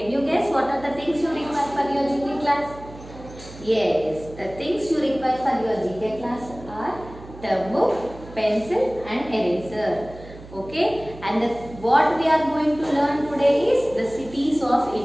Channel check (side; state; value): right; noise; hum, 17 dB below the sound